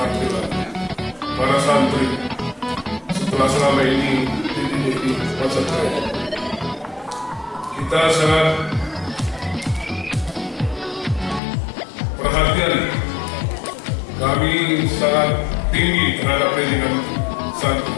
para santri setelah selama ini dididik di pesantren. Kita sangat perhatian, kami sangat tinggi terhadap pendidikan santri.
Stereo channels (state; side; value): drops out; right; at 11.4 s